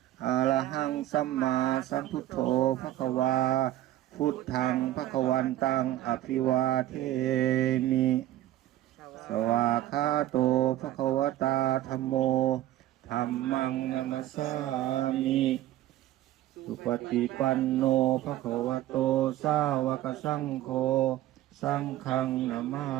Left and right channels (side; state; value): left; quieter; 14.0 dB